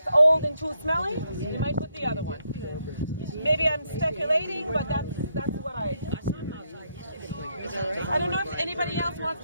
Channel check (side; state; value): both; inverted; correlation -0.77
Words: old and too smelly, you might put the other one. Maybe I'm speculating, but that's what I don't know if anybody else wants